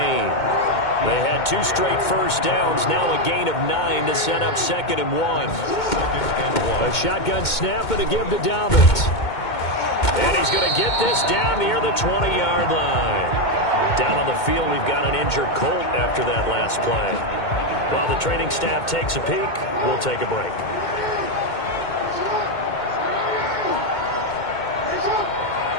They had 2 straight first downs, now a gain of 9 to set up 2nd and 1. A shotgun snap and a give to Dobbins. And he's going to get this down near the 20-yard line. Down on the field, we've got an injured Colt after that last play. While the training staff takes a peek, we'll take a break.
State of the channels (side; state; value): right; late; 2.2 ms